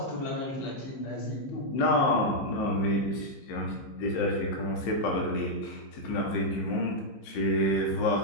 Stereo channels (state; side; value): late; right; 15 ms